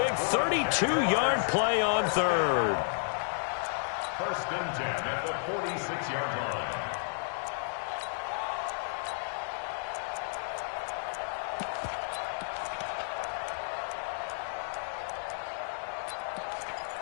32-yard play on 3rd. 1st and 10 at the 46-yard line.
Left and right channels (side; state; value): right; silent; digital silence